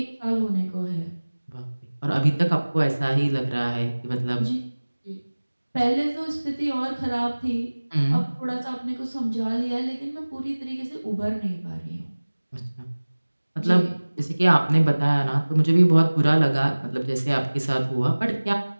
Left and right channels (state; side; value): inverted; both; correlation -1.00